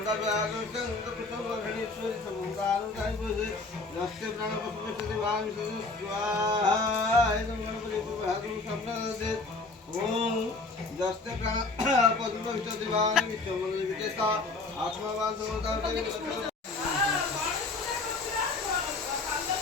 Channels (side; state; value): right; quieter; 3.6 dB